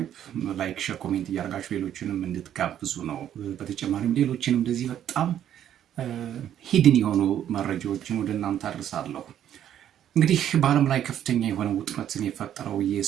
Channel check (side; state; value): left; quieter; 10.5 dB